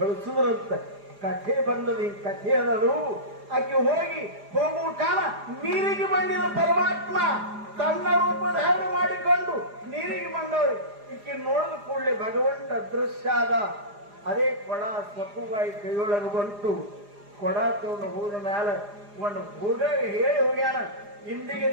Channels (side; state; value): left; late; 4.9 ms